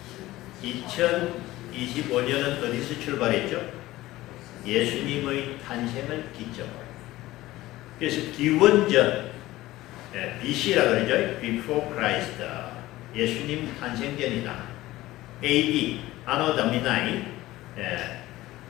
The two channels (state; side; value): quieter; right; 17.1 dB